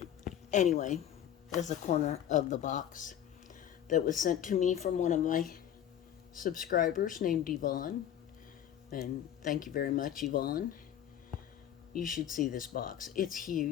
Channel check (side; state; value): right; quieter; 10.2 dB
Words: Anyway, there's a corner of the box that was sent to me from one of my subscribers named Yvonne. And thank you very much, Yvonne. You should see this box. It's